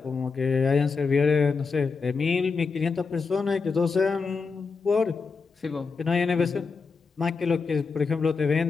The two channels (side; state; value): right; quieter; 4.8 dB